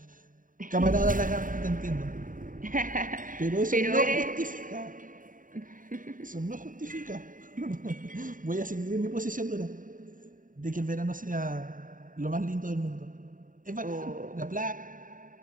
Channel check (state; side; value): late; left; 0.39 ms